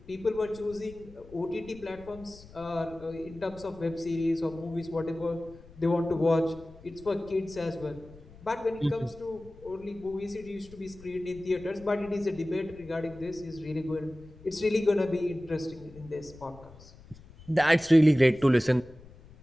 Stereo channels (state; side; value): noise; left; rumble, 21 dB below the sound